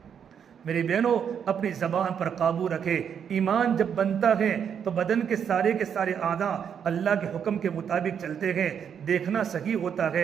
میری بہنوں، اپنی زبان پر قابو رکھے۔ ایمان جب بنتا ہے تو بدن کے سارے اعضاء اللہ کے حکم کے مطابق چلتے ہیں، دیکھنا صحیح ہوتا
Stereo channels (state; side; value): quieter; left; 7.9 dB